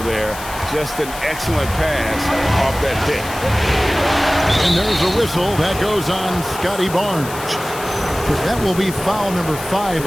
there. Just an excellent pass off that pick. And there's a whistle that goes on Scotty Barnes. That will be foul number 5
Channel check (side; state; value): left; noise; hiss, 13 dB below the sound